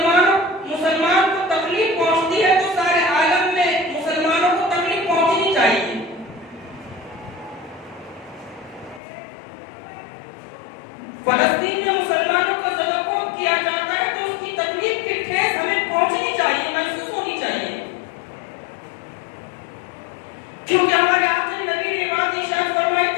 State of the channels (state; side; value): drops out; right; at 9.0 s